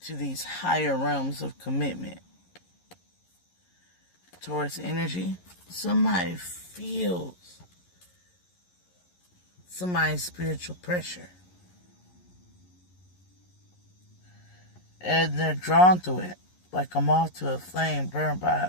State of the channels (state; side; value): late; right; 11 ms